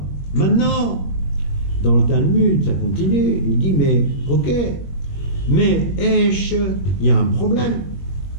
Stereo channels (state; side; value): late; right; 21 ms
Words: maintenant, dans le Talmud, ça continue, il dit, mais ok, mais Esh, il y a un problème.